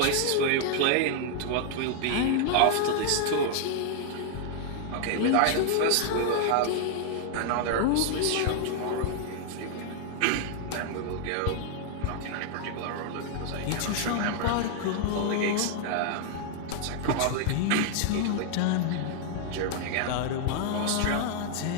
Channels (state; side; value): different; both; correlation 0.00